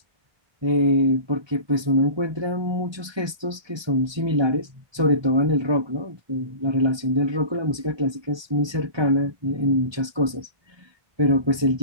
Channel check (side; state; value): left; late; 1.2 ms